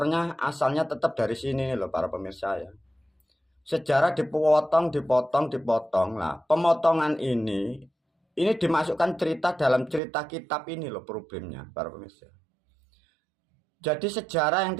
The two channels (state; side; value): drops out; left; at 10.0 s